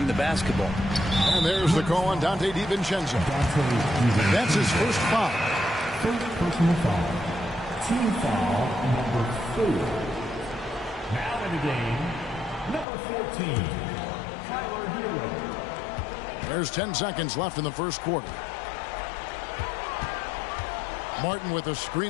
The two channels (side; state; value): right; drops out; at 12.9 s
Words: the basketball. And there's the call on Dante DiVincenzo. That's his first foul. First personal foul. Team foul number 4. Now in the game, number 14, Tyler Hero. There's 10 seconds left in the first quarter. Martin with a